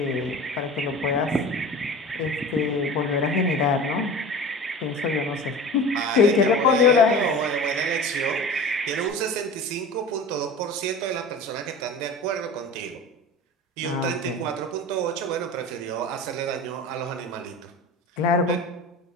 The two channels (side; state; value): both; normal; correlation 0.36